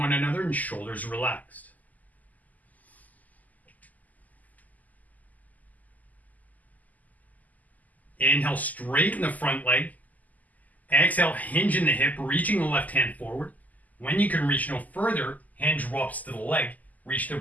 another and shoulders relaxed. Inhale, straighten the front leg. Exhale, hinge in the hip, reaching the left hand forward. When you can reach no further, hand drops to the leg, reach the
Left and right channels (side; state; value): right; late; 0.079 ms